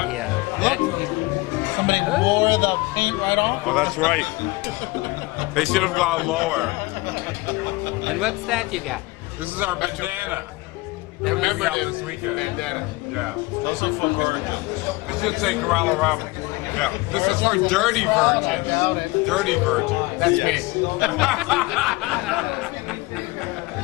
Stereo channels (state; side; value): quieter; right; 22.4 dB